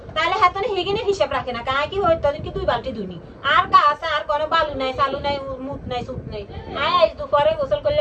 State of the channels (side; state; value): both; identical; correlation 1.00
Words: তাহলে হাতনে হেগিনে হিসাব রাখে না কাই কি হইতো কি দুই বালতি দুনি আর গাছ আর কোনো বালু নাই চালু নাই মুত নাই সুত নাই আজ দুপুরে গোসল